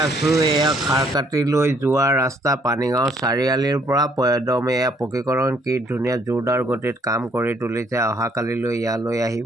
আছোঁ। এয়া খাৰকাটিলৈ যোৱা ৰাস্তা পানীগাঁও চাৰিআলিৰ পৰা একদম এয়া পকীকৰণ কি ধুনীয়া জোৰদাৰ গতিত কাম কৰি তুলিছে। অহাকালিলৈ ইয়ালৈ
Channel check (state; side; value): normal; both; correlation 0.66